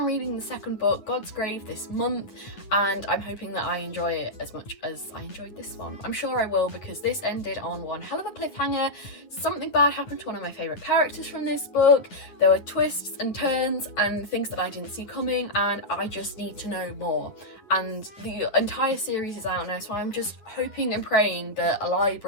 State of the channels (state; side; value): late; right; 9.7 ms